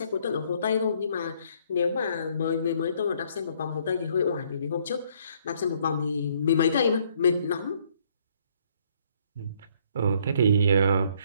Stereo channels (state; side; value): inverted; both; correlation -0.65